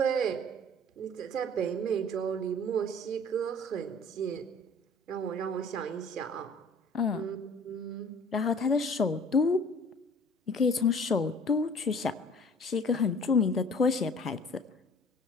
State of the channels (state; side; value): normal; both; correlation 0.50